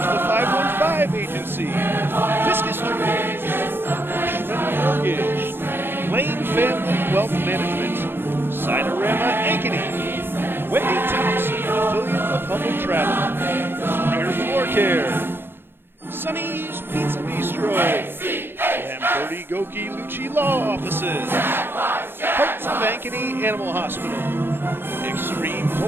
515 Agency, Fiscus Jewelers, Bushman Mortgage, Lane Family Wealth Management, Sinorama Ankeny, Wendy Thompson, an affiliate of Humble Travel, Springer Floor Care, Sonny's Pizza Bistro, Lamberti Goki Lucci Law Offices, Hearts of Ankeny Animal Hospital, Extreme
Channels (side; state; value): left; late; 0.10 ms